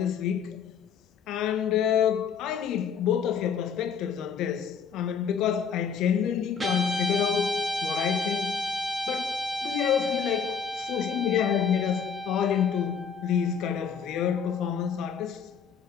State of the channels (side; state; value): right; quieter; 6.7 dB